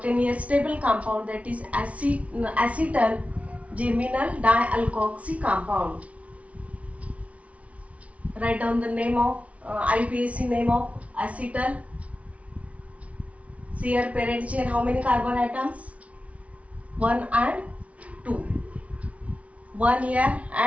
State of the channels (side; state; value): left; late; 0.065 ms